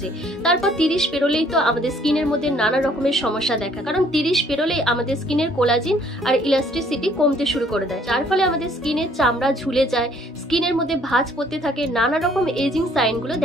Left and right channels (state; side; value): normal; both; correlation 0.61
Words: তারপর 30 পেরোলেই তো আমাদের স্কিনের মধ্যে নানা রকমের সমস্যা দেখা, কারণ 30 পেরোলেই আমাদের স্কিনের কোলাজিন আর ইলাস্টিসিটি কমতে শুরু করে দেয়, যার ফলে আমাদের স্কিনের চামড়া ঝুলে যায়, স্কিনের মধ্যে ভাঁজ পড়তে থাকে, নানা রকম এজিং সাইনগুলো